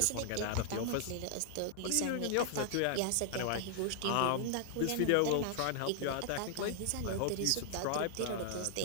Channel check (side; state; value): both; different; correlation 0.00